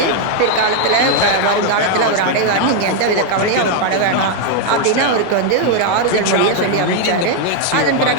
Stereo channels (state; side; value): different; both; correlation 0.01